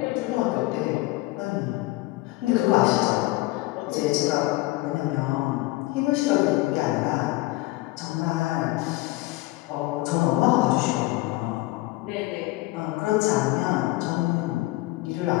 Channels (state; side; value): quieter; right; 19.9 dB